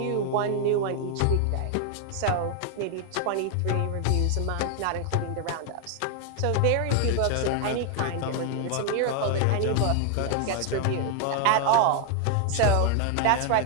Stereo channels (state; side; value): different; both; correlation 0.00